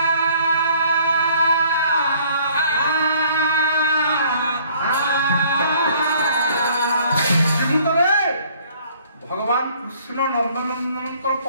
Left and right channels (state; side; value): inverted; both; correlation -0.58